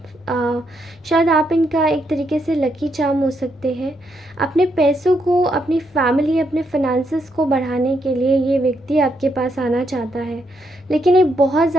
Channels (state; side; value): normal; both; correlation 0.77